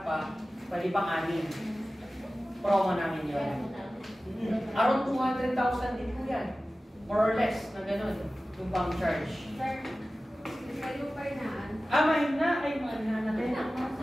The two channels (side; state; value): both; normal; correlation 0.96